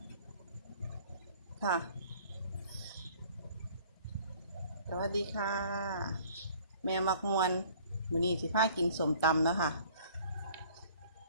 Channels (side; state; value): both; inverted; correlation -0.53